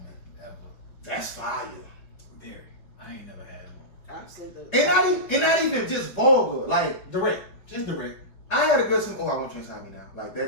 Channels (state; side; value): late; right; 5.4 ms